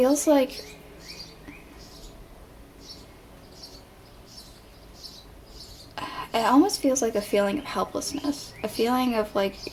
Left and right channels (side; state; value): both; identical; correlation 1.00